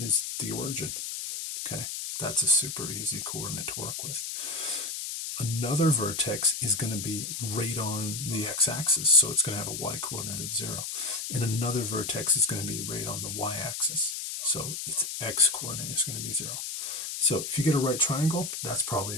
the origin. Okay, that's a super easy coordinate to work with. Another vertex is going to be right on the x-axis, so it's going to have a y-coordinate of 0. And another vertex is going to be right on the y-axis, so its x-coordinate is going to be 0. So if you get a right triangle, that's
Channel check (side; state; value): left; noise; hiss, 5 dB below the sound